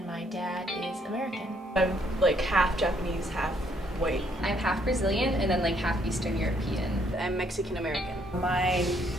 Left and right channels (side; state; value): both; normal; correlation 0.69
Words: my dad is American. I'm like half Japanese, half white. I'm half Brazilian and then like half Eastern European. I'm Mexican American. My